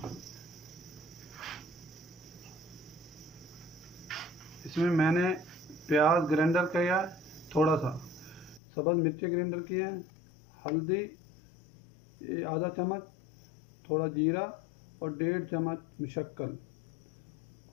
इसमें मैंने प्याज ग्राइंडर किया, थोड़ा सा सब्ज़ मिर्ची ग्राइंडर किया, हल्दी आधा चम्मच, थोड़ा जीरा और 1.5 चम्मच मुशक्कल,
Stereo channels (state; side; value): drops out; right; at 8.6 s